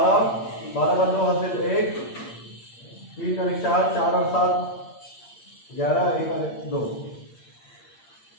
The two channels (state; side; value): late; right; 8.7 ms